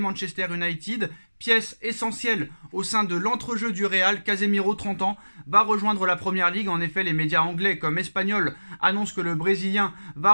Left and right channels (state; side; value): inverted; both; correlation -1.00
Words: United. Pièce essentielle au sein de l'entrejeu du Real, Casemiro, 30 ans, va rejoindre la Première Ligue. En effet, les médias anglais comme espagnols annoncent que le Brésilien va